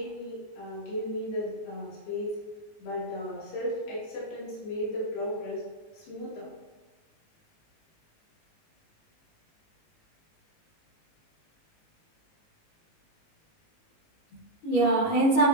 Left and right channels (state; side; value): late; right; 19 ms